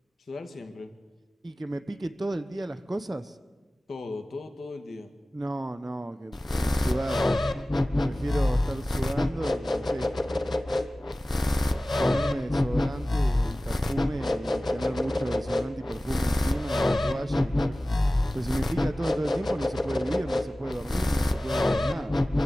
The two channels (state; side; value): normal; both; correlation 0.97